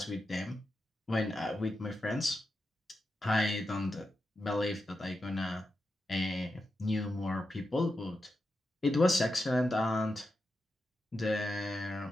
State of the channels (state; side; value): normal; both; correlation 0.88